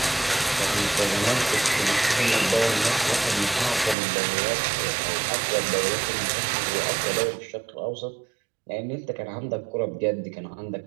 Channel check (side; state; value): left; drops out; at 4.0 s